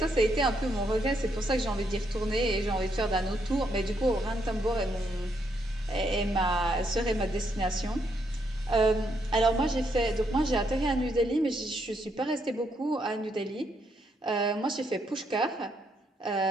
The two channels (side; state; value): both; normal; correlation 0.76